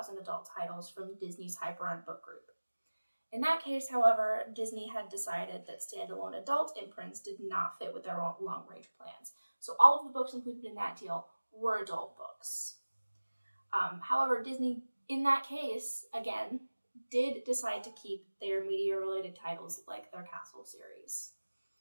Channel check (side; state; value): both; inverted; correlation -1.00